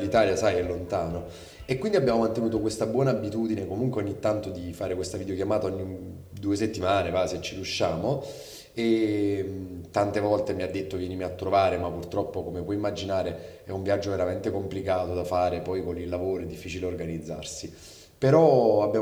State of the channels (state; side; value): identical; both; correlation 1.00